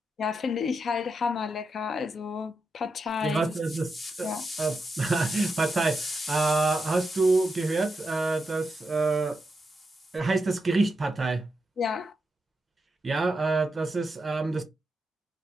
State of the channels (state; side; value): normal; both; correlation 0.86